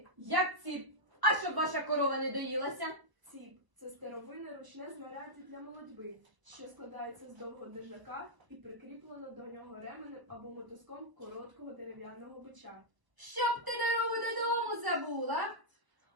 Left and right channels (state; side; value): late; left; 1.0 ms